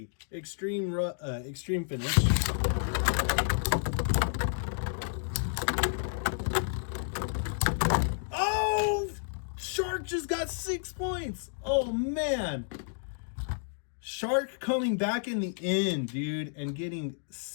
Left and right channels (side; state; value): right; silent; digital silence